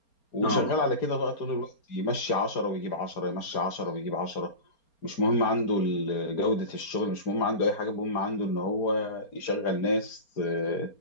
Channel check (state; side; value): late; right; 4.3 ms